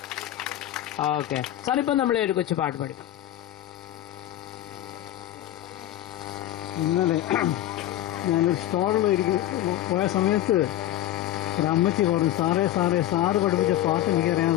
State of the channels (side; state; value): right; quieter; 13.3 dB